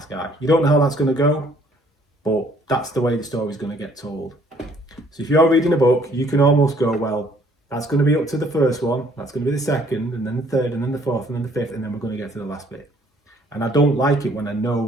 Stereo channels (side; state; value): both; normal; correlation 0.61